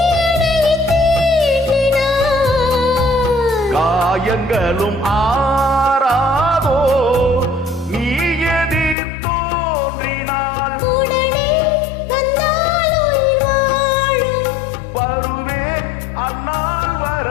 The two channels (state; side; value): drops out; right; at 9.0 s